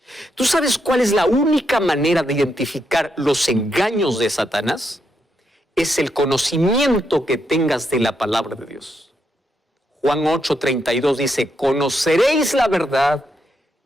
¿Tú sabes cuál es la única manera de identificar los engaños de Satanás? Es el conocimiento que tengas de la palabra de Dios. Juan 8:32 dice, conoceréis la verdad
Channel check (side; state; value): both; normal; correlation 0.80